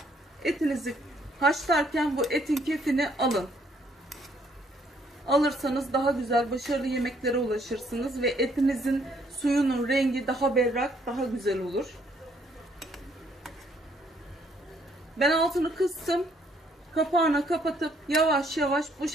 etinizi haşlarken bu etin kefini alın. Alırsanız daha güzel, başarılı yemeklere ulaşırsınız ve etinizin suyunun rengi daha berrak, daha güzel olur. Ben altını kıstım. Kapağını kapatıp yavaş yavaş bu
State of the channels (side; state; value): both; normal; correlation 0.67